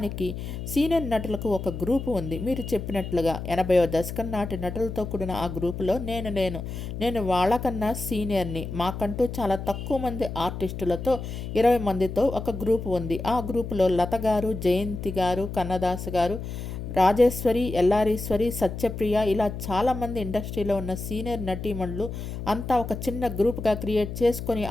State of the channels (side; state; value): left; noise; hum, 7 dB below the sound